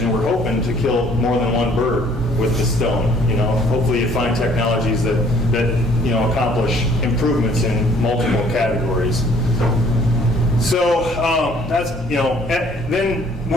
we're hoping to kill more than one bird with the stone. Hopefully you find technologies that accomplish improvements in multiple categories. So that's, then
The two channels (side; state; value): both; normal; correlation 0.59